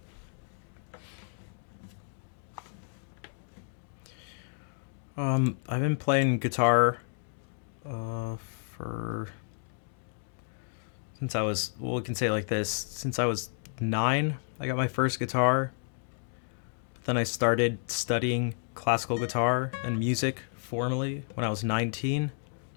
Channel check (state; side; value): silent; right; digital silence